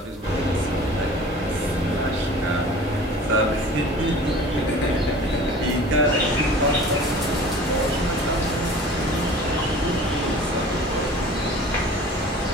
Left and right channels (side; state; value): both; normal; correlation 0.43